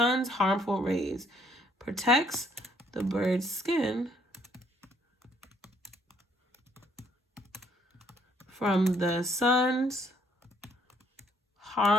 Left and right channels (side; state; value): both; normal; correlation 0.66